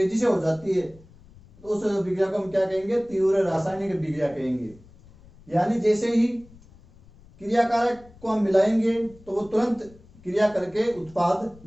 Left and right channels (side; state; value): left; noise; rumble, 25 dB below the sound